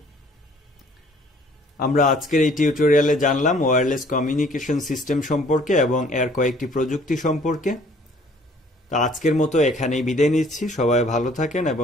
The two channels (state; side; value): normal; both; correlation 0.57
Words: আমরা আজকের এই টিউটোরিয়ালে জানলাম ওয়্যারলেস কমিউনিকেশন সিস্টেম সম্পর্কে এবং এর কয়েকটি প্রযুক্তি সম্পর্কে। তা আজকের মতো এখানেই বিদায় নিচ্ছি। সবাই ভালো থাকেন